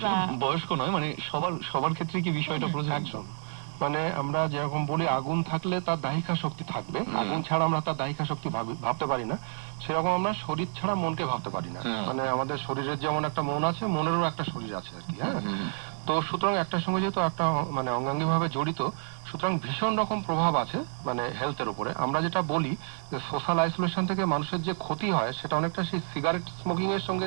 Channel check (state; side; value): silent; left; digital silence